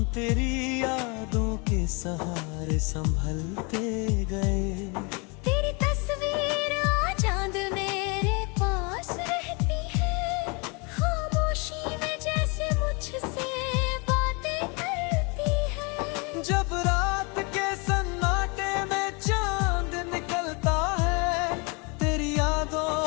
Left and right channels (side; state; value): right; quieter; 31.1 dB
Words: तेरी यादों के सहारे संभलते गए। तेरी तस्वीर आज चांद मेरे पास रहती है, खामोशी में जैसे मुझसे बातें करती है। जब रात के सन्नाटे में चांद निकलता है, तेरी